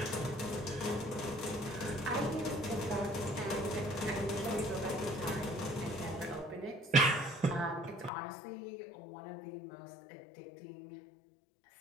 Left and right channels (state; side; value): drops out; right; at 8.1 s